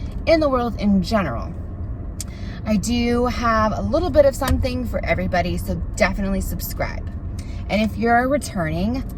in the world in general. I do have a little bit of something for everybody, so definitely subscribe. And if you're returning,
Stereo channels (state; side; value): identical; both; correlation 1.00